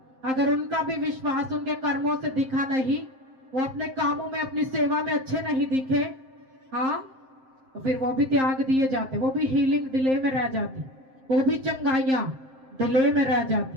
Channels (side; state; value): left; late; 7.6 ms